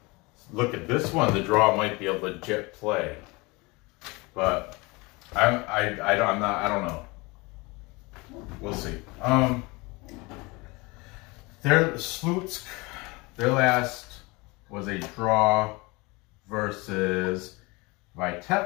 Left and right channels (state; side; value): quieter; right; 25.1 dB